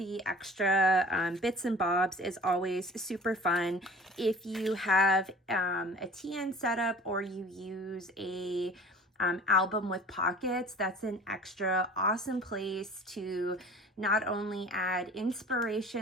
extra bits and bobs is always super fun. If you have a TN setup or you use a album with pockets, that's an extra awesome place to not only add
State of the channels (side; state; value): both; normal; correlation 0.44